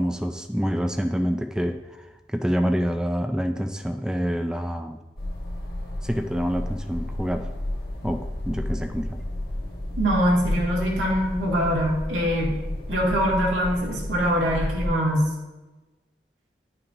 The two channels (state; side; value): normal; both; correlation 0.78